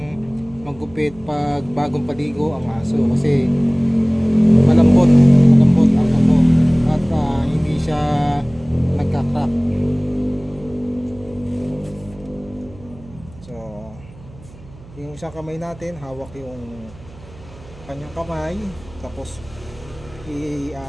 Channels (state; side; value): noise; right; hum, 21 dB below the sound